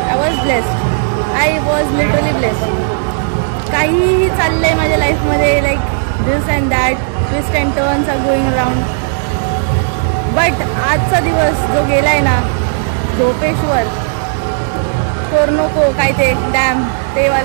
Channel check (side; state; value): left; silent; digital silence